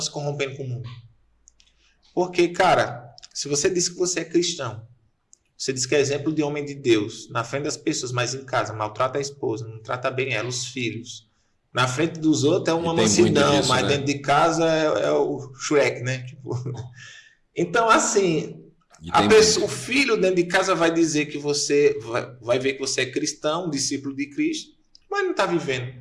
se corrompendo com o mundo? Porque, cara, se você diz que você é cristão, você diz que é exemplo de homem de Deus, na frente das pessoas, mas em casa maltrata a esposa, não trata bem ela, os filhos. Na frente dos outros é uma mansidão, disso, mas né? Dentro de casa é o Shrek, né? Tipo... Então, assim... o filho dentro de casa vai dizer que você vai ver que você é cristão, discípulo de Cristo, mas não está vivendo.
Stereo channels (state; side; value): identical; both; correlation 1.00